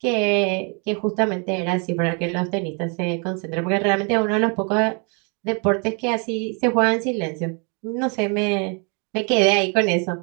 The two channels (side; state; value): left; quieter; 35.8 dB